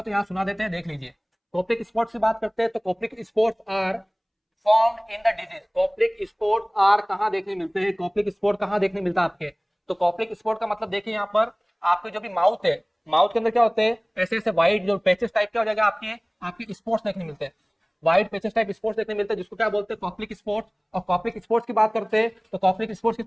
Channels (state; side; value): identical; both; correlation 1.00